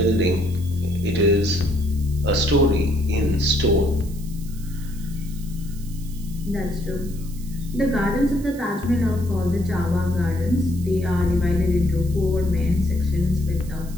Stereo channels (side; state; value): right; noise; hiss, 20 dB below the sound